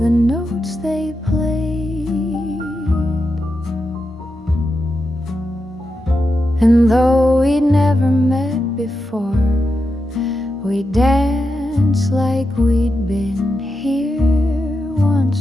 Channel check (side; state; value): both; normal; correlation 0.88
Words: notes they played. And though we'd never met before, we danced like we'd been here